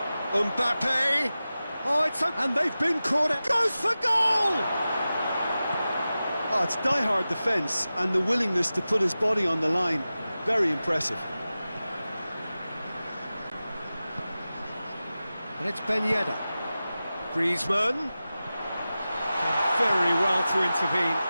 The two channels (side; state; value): both; inverted; correlation -0.95